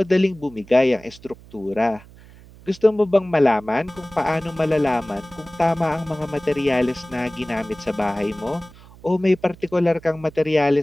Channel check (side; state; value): right; noise; hum, 22 dB below the sound